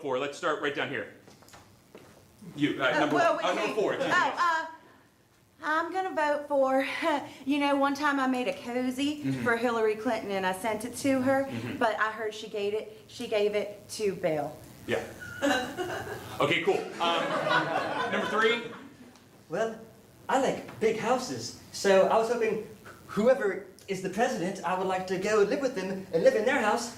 Let's start right down here. You number 4. Excuse me. I'm gonna vote for, you know, one time I made a cozy for Hillary Clinton and I sent it to her, but I heard she gave it to Bill. Yeah. Okay. Cool. Number 3. Well, I like big houses, so I was hoping whoever is the president, I would like to go live with them and live in their house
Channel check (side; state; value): both; identical; correlation 1.00